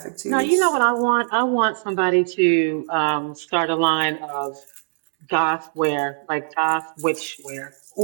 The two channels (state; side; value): silent; left; digital silence